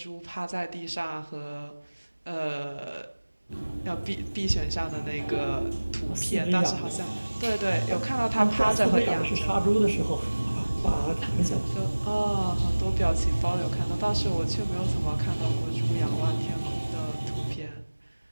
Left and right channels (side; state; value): both; inverted; correlation -1.00